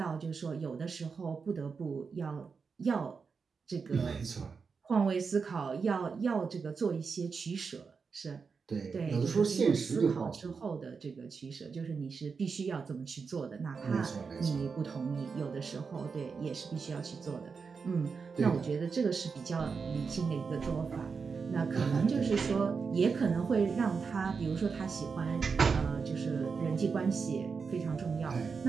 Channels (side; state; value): left; quieter; 5.3 dB